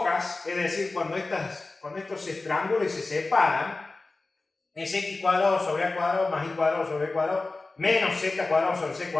es decir, cuando estos estrángulos se separan, es x cuadrado sobre a cuadrado más y cuadrado sobre b cuadrado menos z cuadrado sobre c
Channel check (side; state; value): right; quieter; 3.4 dB